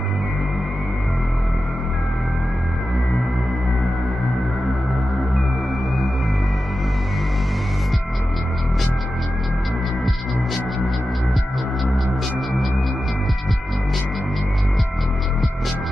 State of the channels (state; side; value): normal; both; correlation 0.92